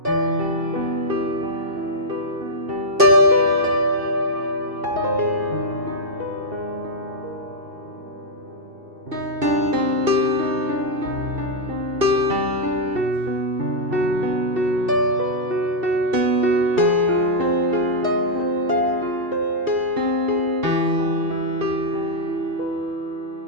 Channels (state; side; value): late; left; 2.7 ms